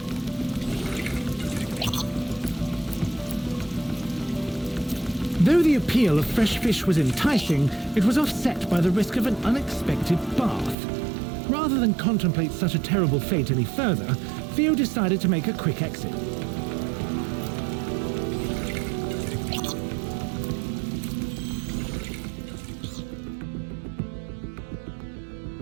Though the appeal of fresh fish was enticing, it was offset by the risk of an unexpected bath. Rather than contemplate such a terrible fate any further, Theo decided to make a quick exit.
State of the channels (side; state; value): left; drops out; at 10.8 s